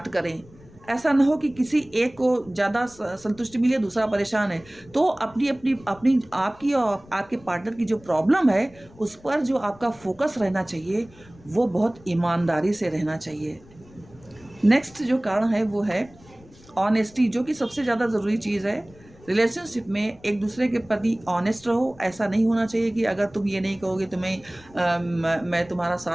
करें। ऐसा ना हो कि किसी एक को ज़्यादा संतुष्टि मिले, दूसरा परेशान है। तो अपनी आपकी और आपके पार्टनर की जो प्रॉब्लम है उस पर जो आपका फोकस रहना चाहिए वो बहुत ईमानदारी से रहना चाहिए। नेक्स्ट जो कारण है वो है ऑनेस्टी, जो कि सबसे ज़्यादा ज़रूरी चीज़ है रिलेशनशिप में। एक दूसरे के प्रति ऑनेस्ट रहो। ऐसा नहीं होना चाहिए कि अगर तुम ये नहीं कहोगे तो मैं तुम्हारा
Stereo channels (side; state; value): left; noise; rumble, 25 dB below the sound